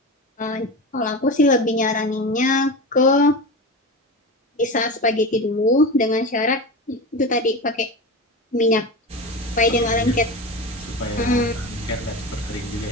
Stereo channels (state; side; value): normal; both; correlation 0.25